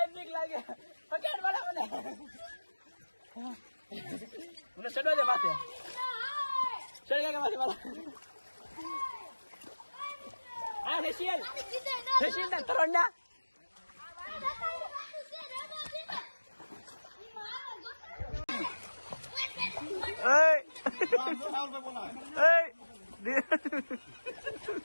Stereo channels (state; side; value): inverted; both; correlation -1.00